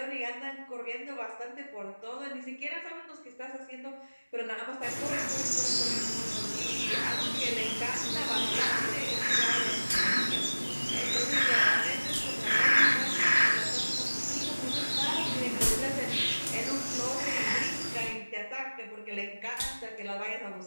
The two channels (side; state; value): both; inverted; correlation -1.00